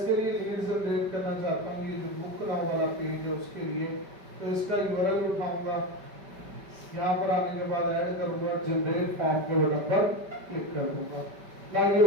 लिए लीड जनरेट करना चाहता हूँ, ये जो बुक नाउ वाला पेज है उसके लिए। तो इसका यूआरएल उठाऊंगा, यहाँ पर आने के बाद ऐड करूंगा, जनरेट फॉर्म के बटन पर क्लिक कर दूंगा। ना ये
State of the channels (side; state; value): left; late; 5.2 ms